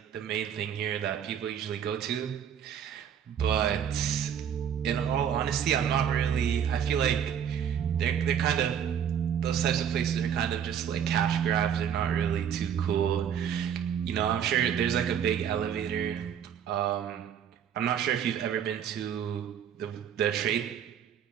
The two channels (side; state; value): left; quieter; 8.7 dB